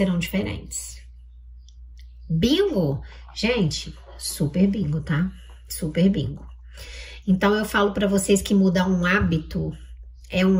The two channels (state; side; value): identical; both; correlation 1.00